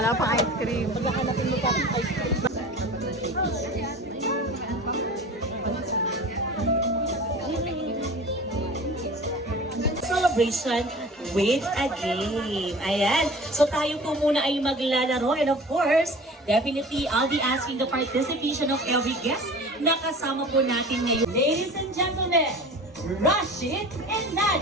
pang ice cream. Maghahanapin mo pa ng ice cream. Celebration with a game. Ayan. So tayo po muna ay maglalaro. And of course, definitely, I'll be asking the participation of every guest na kasama po natin ngayon. Ladies and gentlemen, Rashid and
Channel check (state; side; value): normal; both; correlation 0.39